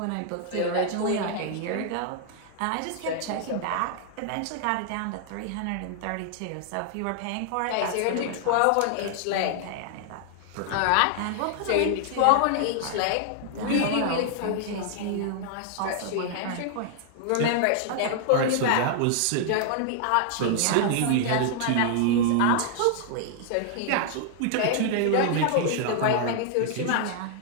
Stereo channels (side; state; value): both; different; correlation -0.01